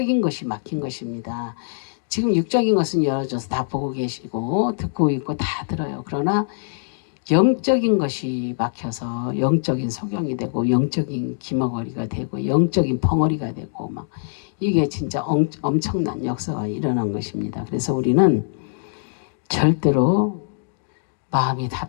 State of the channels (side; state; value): right; silent; digital silence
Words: 것이 막힌 것입니다. 지금 육적인 것은 열어져서 다 보고 계시고 듣고 있고 다 들어요. 그러나 영적인 것이 막혀서 영적인 소경이 되고 영적인 기머거리가 되고 영적인 벙어리가 되고 막 이게 진짜 엄청난 역사가 일어난 것입니다. 그래서 우리는 절대로 마음이